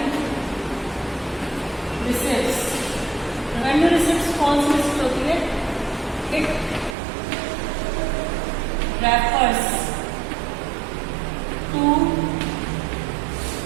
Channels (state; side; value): drops out; left; at 7.0 s